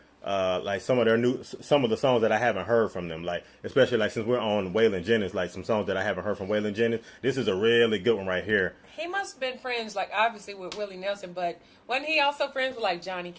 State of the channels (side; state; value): both; identical; correlation 1.00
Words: some of the songs that I haven't heard from them. Especially since we're on Waylon Jennings, some songs that I haven't heard from Waylon Jennings. This is a really good one right here. He must have been friends, obviously with Willie Nelson, but wasn't he also friends with Johnny